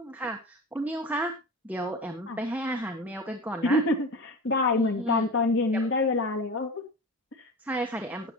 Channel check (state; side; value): normal; both; correlation 0.32